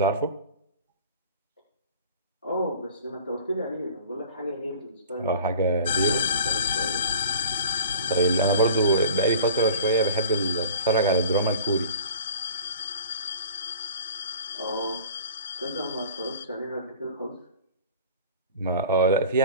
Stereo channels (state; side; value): inverted; both; correlation -0.44